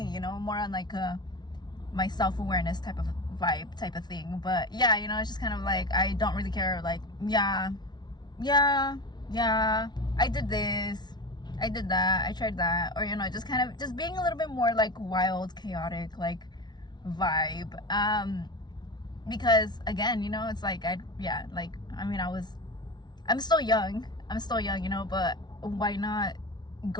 you know, more on like my self-awareness type of vibe type of thing. But yeah, you know, it's just kind of like, I don't really care. Like, yeah, I did this, I did that, I tried that, or, you know, just kind of just being a little bit more like wild, chaotic, like vibe. Because again, you know, it's like, I'm still young, you know, but why not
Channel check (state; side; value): late; right; 0.20 ms